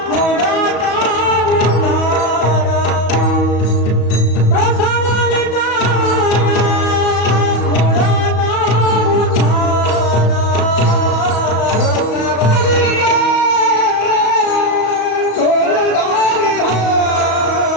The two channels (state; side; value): late; right; 34 ms